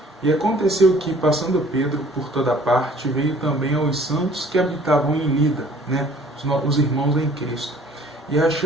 E aconteceu que, passando Pedro por toda parte, veio também aos santos que habitavam em Lida, né, os irmãos em Cristo. E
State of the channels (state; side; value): normal; both; correlation 0.54